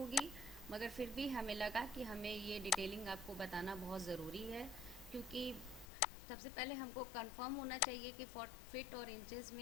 मगर फिर भी हमें लगा कि हमें ये डिटेलिंग आपको बताना बहुत ज़रूरी है, क्योंकि सबसे पहले हमको कंफर्म होना चाहिए कि फिट और इंचेस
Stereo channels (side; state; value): right; drops out; at 5.9 s